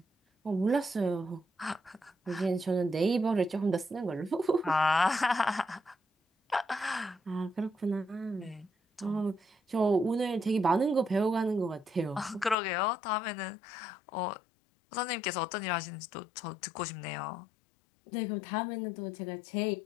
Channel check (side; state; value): right; drops out; at 12.6 s